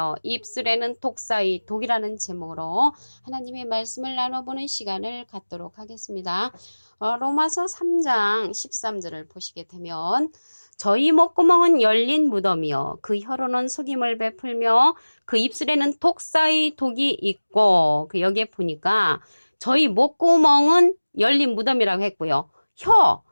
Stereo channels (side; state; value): both; inverted; correlation -1.00